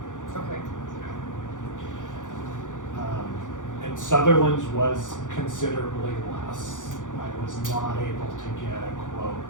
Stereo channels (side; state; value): right; late; 0.87 ms